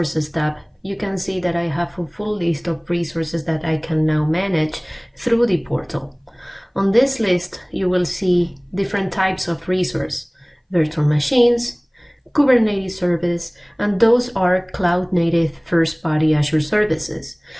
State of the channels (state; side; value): identical; both; correlation 1.00